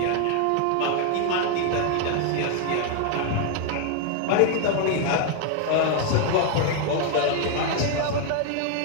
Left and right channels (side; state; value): both; different; correlation 0.00